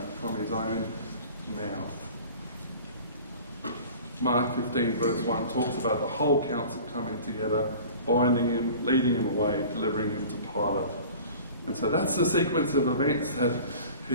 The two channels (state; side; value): inverted; both; correlation -0.42